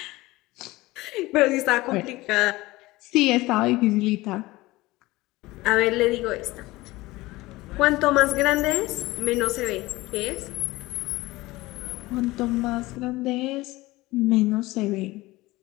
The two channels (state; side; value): quieter; right; 19.6 dB